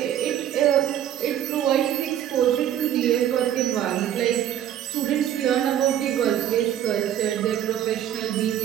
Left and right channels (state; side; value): quieter; left; 10.8 dB